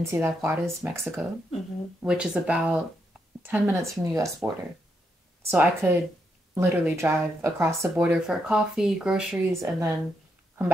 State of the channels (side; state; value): both; normal; correlation 0.80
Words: Ciudad Juarez, Mexico, which is about 10 minutes from the U.S. border. So I could literally drive across the border for coffee, groceries, and then come